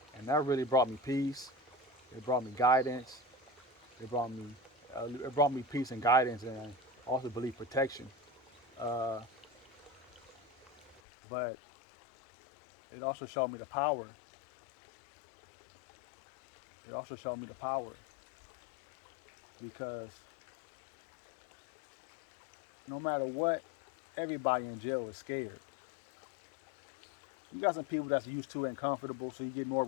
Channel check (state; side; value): drops out; right; at 11.0 s